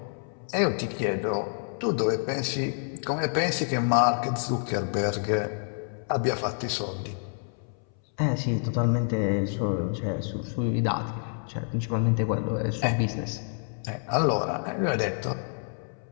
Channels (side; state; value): right; silent; 59 dB below the other